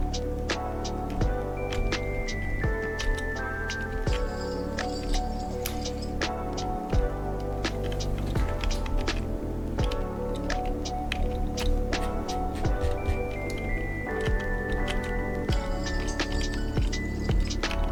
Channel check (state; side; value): identical; both; correlation 1.00